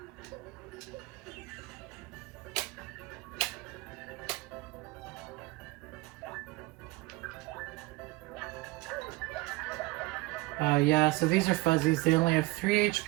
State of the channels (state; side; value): quieter; left; 21.0 dB